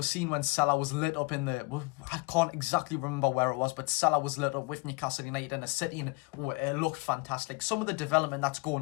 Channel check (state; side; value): quieter; right; 26.7 dB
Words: seeing when Salah was lit up in the... I can't exactly remember where it was, but Salah was lit up with Newcastle United in a city, and it looked fantastic. Some of the development that's